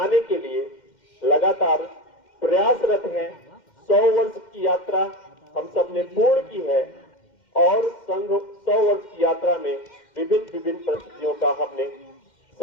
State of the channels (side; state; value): right; late; 2.1 ms